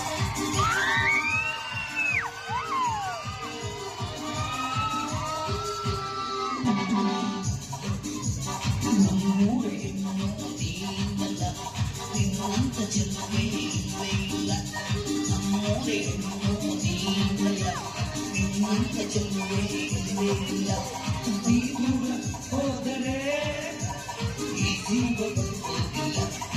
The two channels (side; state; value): both; identical; correlation 1.00